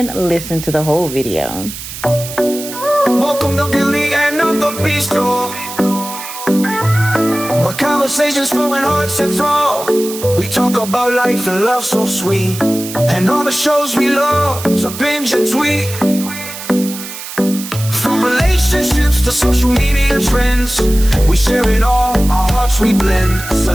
listen to the whole video. Welcome to Beauty and Not the Beast, where conversations flowing hearts and throw. We talk about life and love so sweet, and all the shows we love to binge and tweet. From relationships to social media trends, we share it all, our hearts we blend.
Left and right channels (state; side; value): noise; right; hiss, 11 dB below the sound